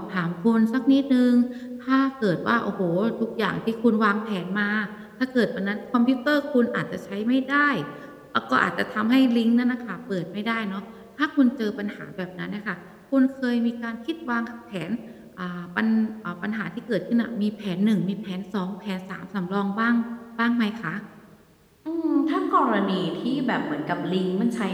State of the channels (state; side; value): identical; both; correlation 1.00